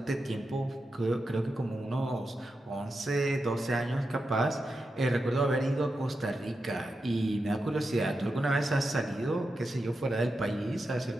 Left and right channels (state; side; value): normal; both; correlation 0.89